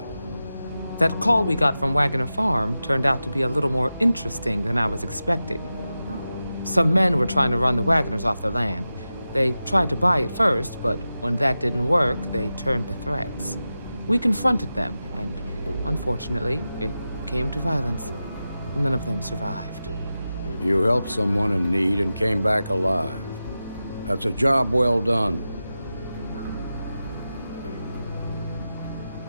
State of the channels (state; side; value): inverted; both; correlation -0.93